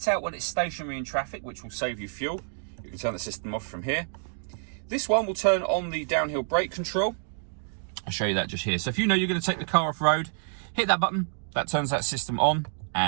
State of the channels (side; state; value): left; silent; 59 dB below the other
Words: out when it's stationary in traffic, which will save you fuel. You can turn the system off from here. This one will turn on the downhill brake control. I'll show you that just here. So if you know you're going to take the car off road, hit that button. That turns that system on